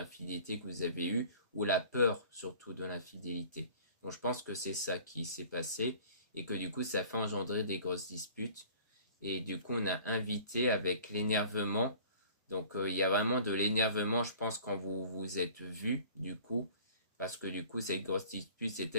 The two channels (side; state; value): both; inverted; correlation -0.47